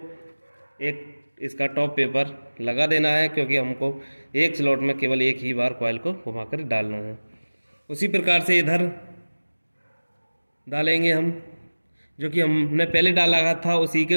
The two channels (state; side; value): inverted; both; correlation -1.00